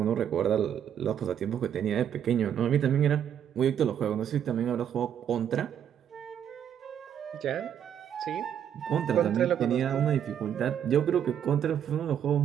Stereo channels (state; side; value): quieter; left; 9.2 dB